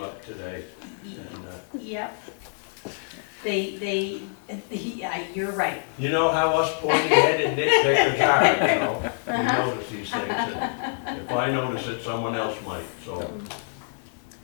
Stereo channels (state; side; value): silent; right; 58 dB below the other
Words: up today, and, Yep. Yeah, you're right. you know how us pointy-headed nitpickers are, you know? We Uh-huh. notice these things, and if I notice it, someone else might, so.